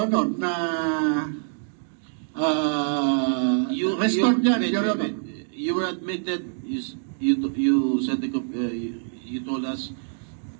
na restored yan, Your Honor. You were admitted, you said you told us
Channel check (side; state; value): left; silent; digital silence